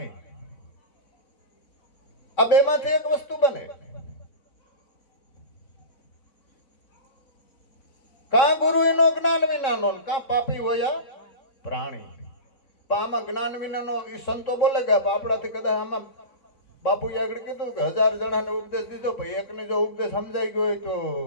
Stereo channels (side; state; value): right; late; 3.7 ms